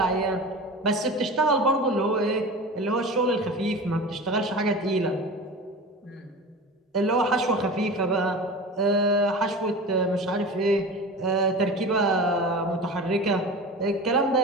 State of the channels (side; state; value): both; normal; correlation 0.32